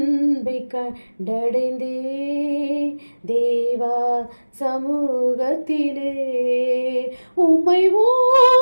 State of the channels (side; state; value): both; inverted; correlation -1.00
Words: கண்டடைந்தே தேவா சமூகத்திலே. உம்மை